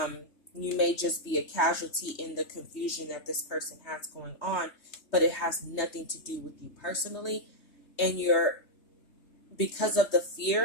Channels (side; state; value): right; late; 3.2 ms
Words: may just be a casualty in the confusion that this person has going on, but it has nothing to do with you personally. And because of the